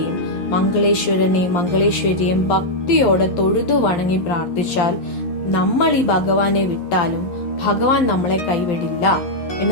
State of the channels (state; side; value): late; right; 11 ms